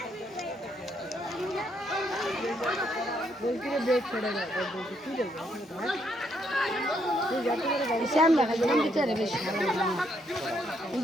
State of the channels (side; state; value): both; normal; correlation 0.74